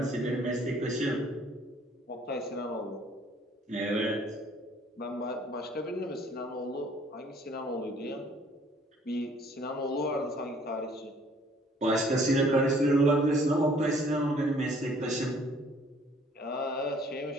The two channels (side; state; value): both; normal; correlation 0.58